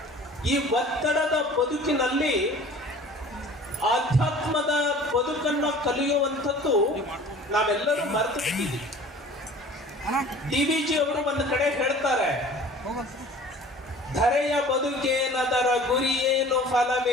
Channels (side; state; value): both; normal; correlation 0.46